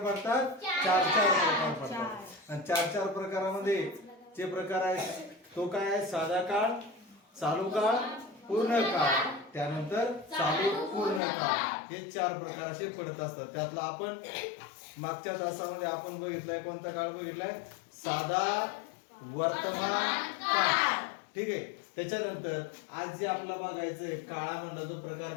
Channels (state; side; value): drops out; right; at 11.2 s